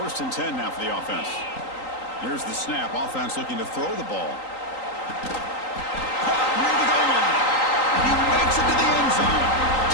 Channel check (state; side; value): late; right; 3.8 ms